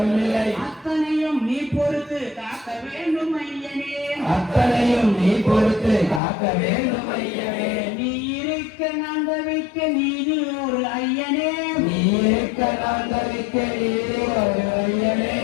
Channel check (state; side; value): drops out; right; at 6.2 s